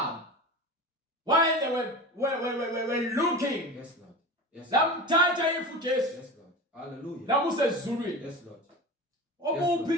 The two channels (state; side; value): normal; both; correlation 0.30